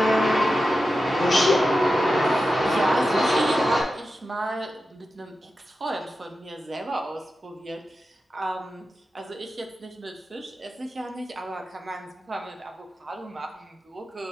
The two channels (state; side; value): normal; both; correlation 0.92